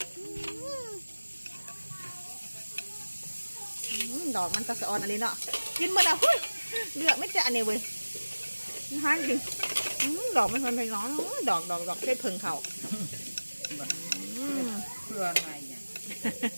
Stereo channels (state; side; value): inverted; both; correlation -1.00